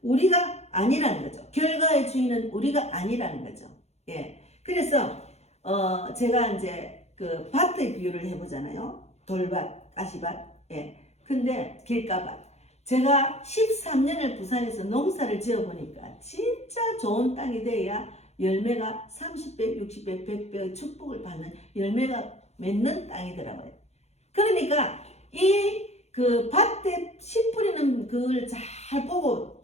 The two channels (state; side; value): late; right; 0.31 ms